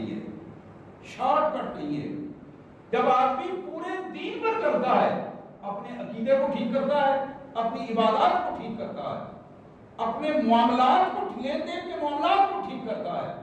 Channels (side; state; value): both; identical; correlation 1.00